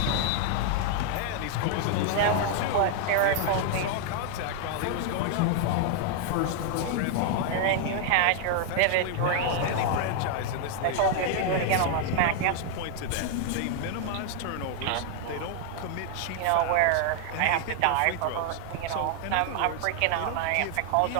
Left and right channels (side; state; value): both; different; correlation 0.00